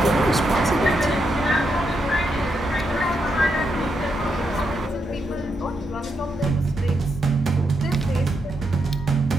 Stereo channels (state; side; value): normal; both; correlation 0.82